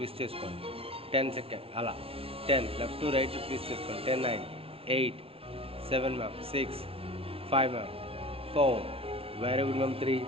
చేసుకోండి. 10 seconds అలా. 10, left to right twist చేసుకోండి. 10, 9, 8, 7 ma'am. 6, 5 ma'am. 4, very good ma'am. 3,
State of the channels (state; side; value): late; left; 0.27 ms